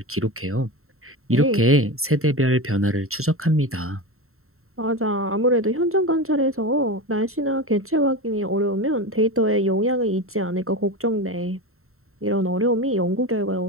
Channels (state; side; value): late; left; 0.62 ms